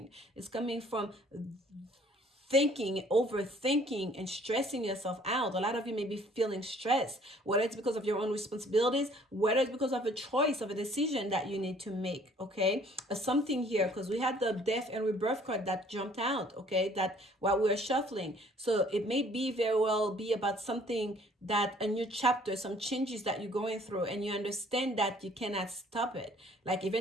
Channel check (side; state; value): both; normal; correlation 0.57